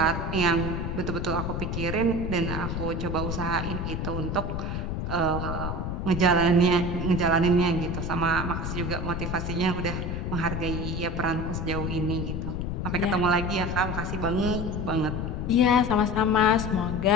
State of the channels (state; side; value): noise; left; rumble, 3 dB below the sound